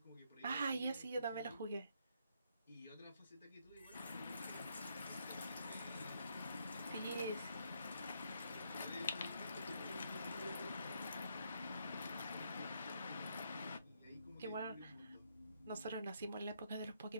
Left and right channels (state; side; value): inverted; both; correlation -0.74